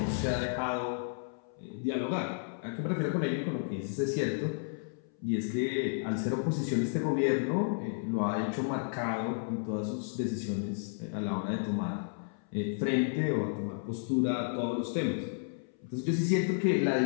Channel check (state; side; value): silent; right; 56 dB below the other